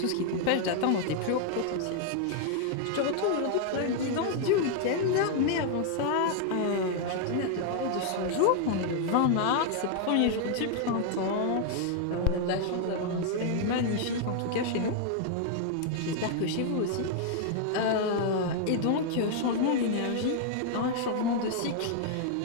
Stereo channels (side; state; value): both; different; correlation 0.00